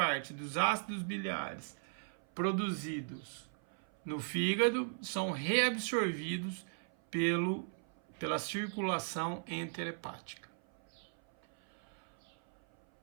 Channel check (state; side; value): silent; left; 53 dB below the other